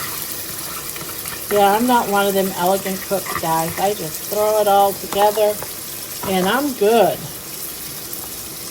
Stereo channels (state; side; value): identical; both; correlation 1.00